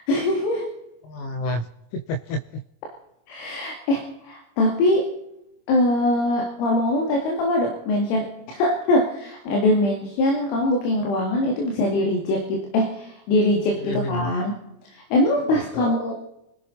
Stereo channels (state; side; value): late; right; 25 ms